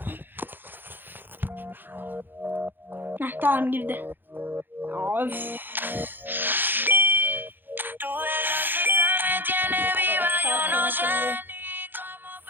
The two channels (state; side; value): late; left; 0.094 ms